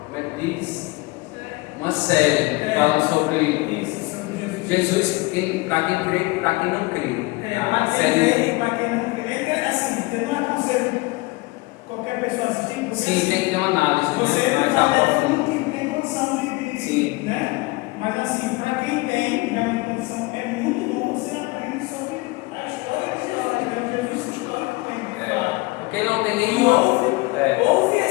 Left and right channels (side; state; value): right; quieter; 23.4 dB